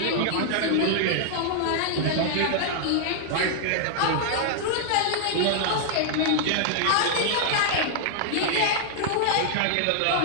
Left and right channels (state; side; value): different; both; correlation -0.01